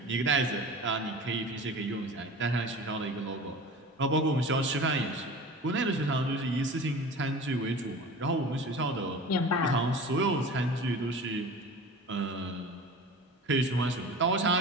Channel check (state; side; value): normal; both; correlation 0.37